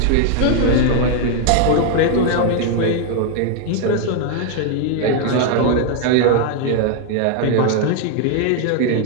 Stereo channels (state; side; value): different; both; correlation 0.00